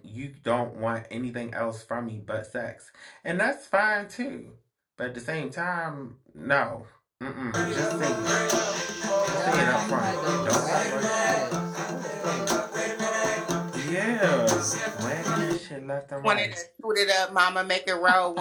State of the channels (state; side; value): identical; both; correlation 1.00